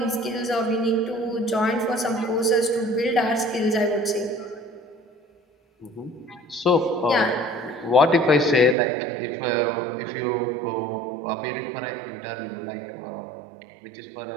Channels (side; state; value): left; drops out; at 8.8 s